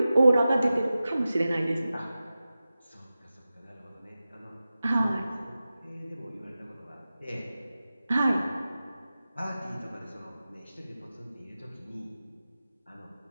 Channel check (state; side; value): inverted; both; correlation -0.94